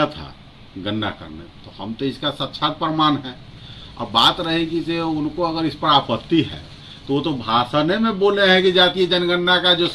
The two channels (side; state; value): both; identical; correlation 1.00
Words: था गणना करने, तो हम तो इसका साक्षात प्रमाण है। अब बात रहेगी कि उनको अगर इस पर आपत्ति है तो वो तो भाषण में बोले हैं कि जातीय जनगणना का जो